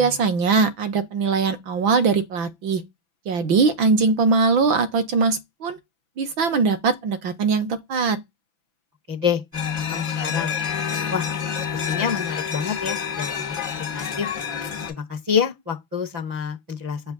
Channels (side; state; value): left; late; 6.0 ms